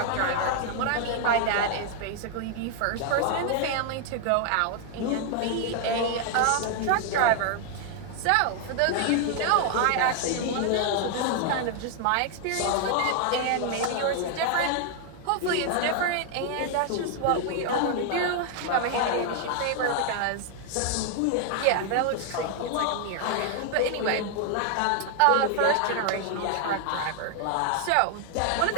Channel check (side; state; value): both; different; correlation 0.00